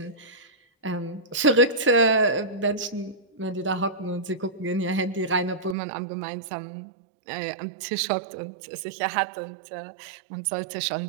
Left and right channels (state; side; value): drops out; left; at 5.8 s